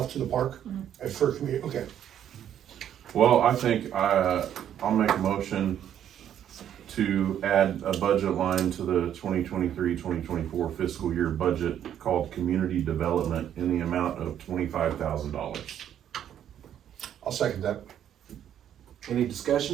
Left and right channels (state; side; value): quieter; left; 10.1 dB